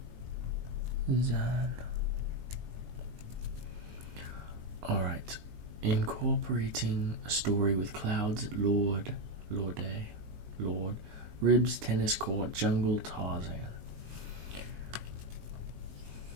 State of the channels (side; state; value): left; late; 19 ms